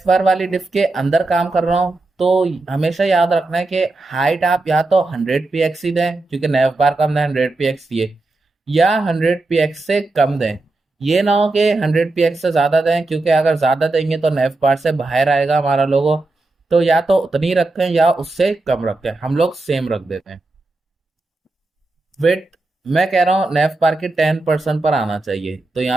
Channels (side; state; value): left; quieter; 3.1 dB